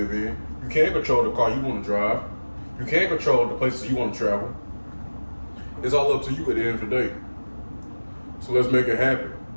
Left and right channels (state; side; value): inverted; both; correlation -1.00